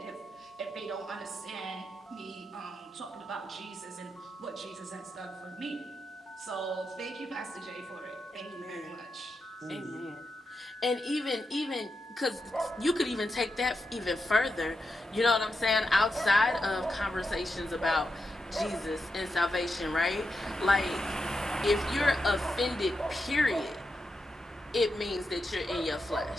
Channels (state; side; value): normal; both; correlation 0.87